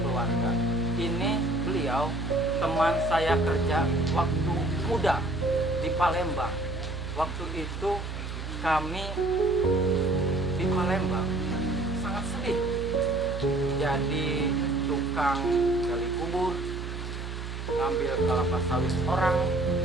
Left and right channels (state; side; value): noise; right; hum, 7 dB below the sound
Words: Ini beliau teman saya kerja waktu muda di Palembang. Waktu itu kami di Palembang sangat sedih. Jadi tukang gali kubur, ngambil kelapa sawit orang,